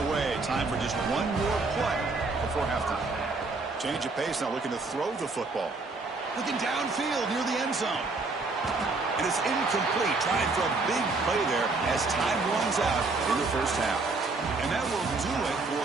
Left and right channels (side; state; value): left; quieter; 3.7 dB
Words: away. Time for just one more play before halftime. Change of pace now, looking to throw the football. Looking downfield near the end zone. And it's incomplete. Trying for a big play there as time runs out in the first half. And that will do it